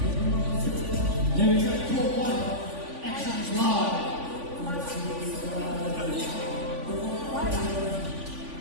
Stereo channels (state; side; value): late; left; 3.5 ms